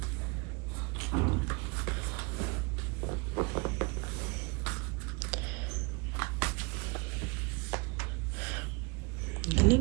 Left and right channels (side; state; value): left; quieter; 29.4 dB